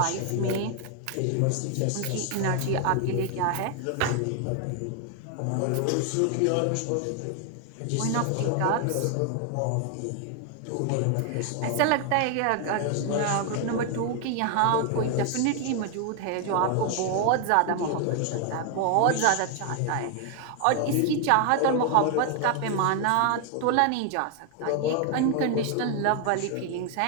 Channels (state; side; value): different; both; correlation 0.00